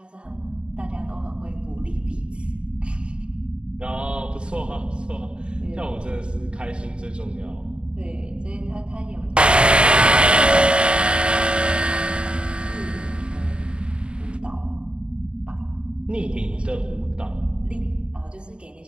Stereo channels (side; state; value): left; late; 0.054 ms